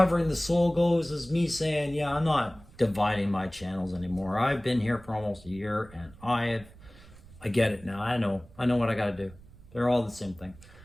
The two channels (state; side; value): noise; right; rumble, 22 dB below the sound